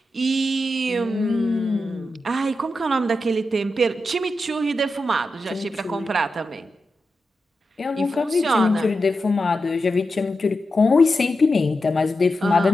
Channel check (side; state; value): both; normal; correlation 0.89